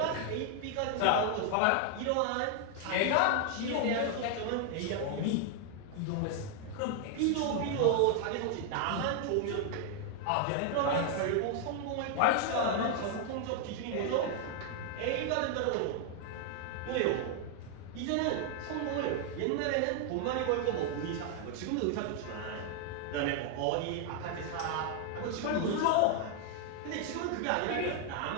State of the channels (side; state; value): both; different; correlation 0.00